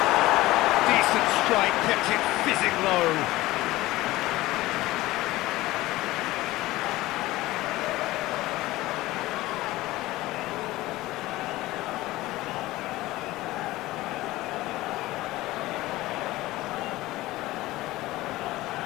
Decent strike, kept it fizzing low.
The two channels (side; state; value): right; quieter; 18.0 dB